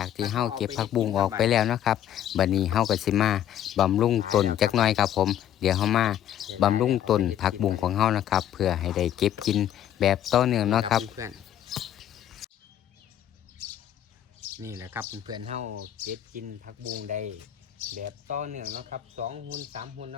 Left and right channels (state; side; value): quieter; right; 10.9 dB